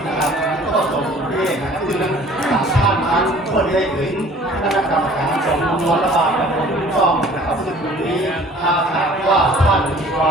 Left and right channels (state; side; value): normal; both; correlation 0.51